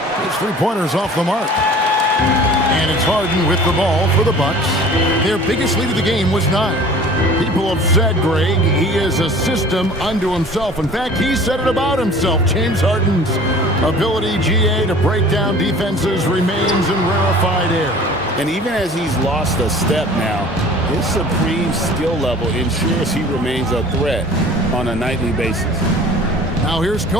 His three-pointers off the mark. And it's Harden with the ball for the Bucks. Their biggest lead of the game was 9. People have said, Greg, he is a system unto himself. In fact, he said it about himself. James Harden's ability, GA, to break down defenses remains in rarefied air. And even as he's lost a step now, his supreme skill level ensures he remains a threat on a nightly basis. Now here's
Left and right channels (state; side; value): normal; both; correlation 0.45